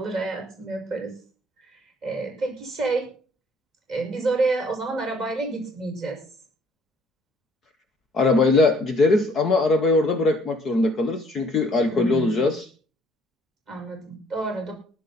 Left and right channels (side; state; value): both; normal; correlation 0.61